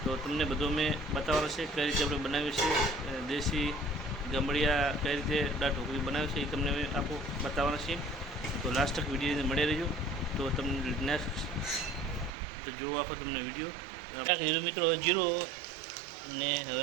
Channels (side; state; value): left; drops out; at 12.3 s